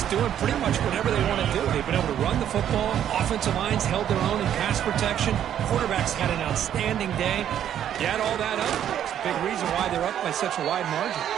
doing pretty much whatever they want to do. They've been able to run the football. Offensive lines held their own in pass protection. Quarterbacks had an outstanding day. You add all that up, it's a big reason why they're up by such a wide margin.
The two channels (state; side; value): quieter; left; 10.2 dB